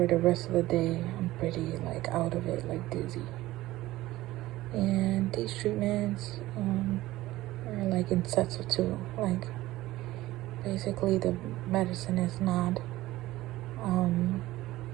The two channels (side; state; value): left; quieter; 16.8 dB